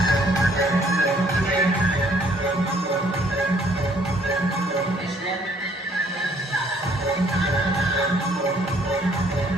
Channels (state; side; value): normal; both; correlation 0.63